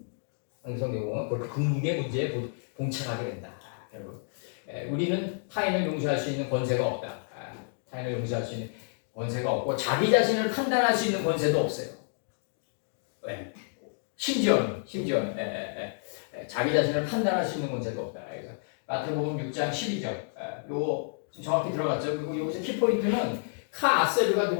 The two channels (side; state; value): right; silent; digital silence